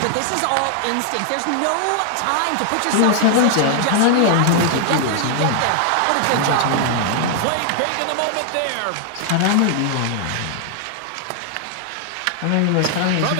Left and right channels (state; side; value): different; both; correlation 0.00